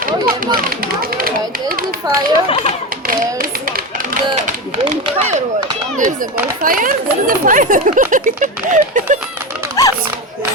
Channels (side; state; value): both; normal; correlation 0.19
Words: Oh yeah, right. There's the fire. There's the firework. There's the bonfire. There is the fire.